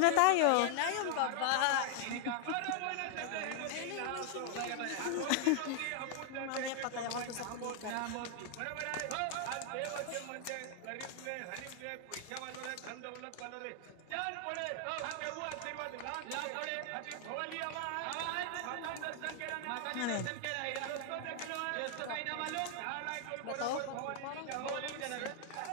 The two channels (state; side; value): different; both; correlation 0.00